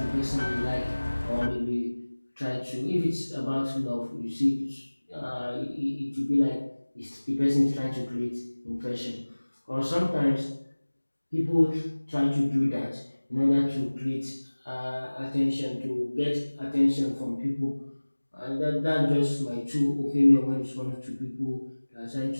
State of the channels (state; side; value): inverted; both; correlation -1.00